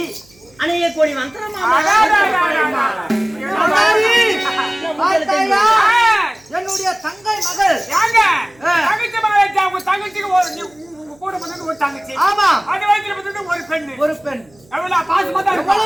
அணியக்கூடிய என்னுடைய தங்கை மகள் தங்கச்சி. ஆமா, அது வயித்துல ஒரு பெண். ஒரு பெண்.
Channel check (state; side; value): noise; right; hum, 30 dB below the sound